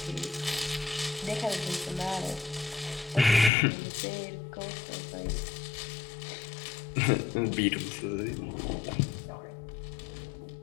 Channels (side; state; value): right; drops out; at 3.5 s